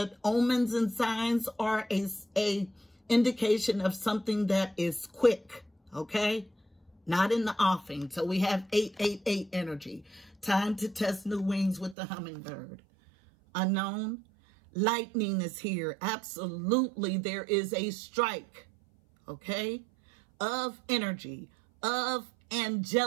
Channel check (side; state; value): left; drops out; at 12.0 s